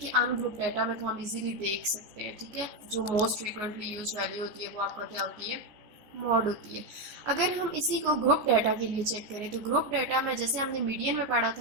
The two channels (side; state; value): left; late; 14 ms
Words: अनग्रुप डाटा में तो हम इजीली देख सकते हैं, ठीक है, जो मोस्ट फ्रीक्वेंटली यूज वैल्यू होती है वो आपका क्या होती है, मॉड होती है। अगर हम इसी को ग्रुप डाटा के लिए चेक करें तो ग्रुप डाटा में जैसे हमने मीडियन में पढ़ा